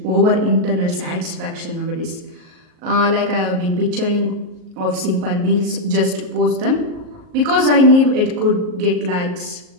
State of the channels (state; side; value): late; left; 38 ms